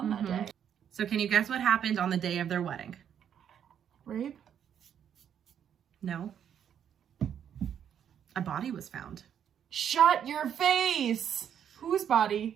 that day. So can you guess what happened on the day of their wedding? Rape? No. A body was found. Shut your face. Whose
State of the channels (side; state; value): left; quieter; 8.9 dB